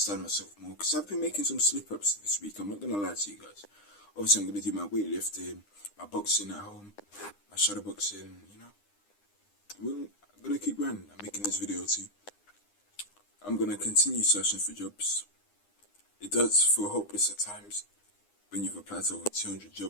myself more, because I've been making some slip-ups this week. I'm not gonna lie to you guys. Obviously, I'm gonna do my weightlifting, my boxing at home, my shadow boxing. I'm gonna keep running. I'm making this video too. I'm gonna continue searching for jobs. It does feel hopeless at times when you've applied to over 200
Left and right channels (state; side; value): late; right; 9.8 ms